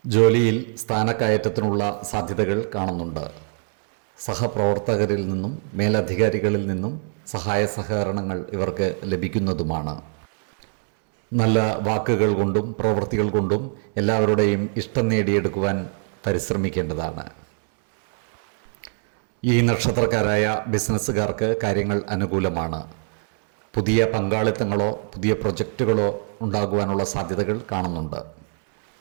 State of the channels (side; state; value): left; silent; 63 dB below the other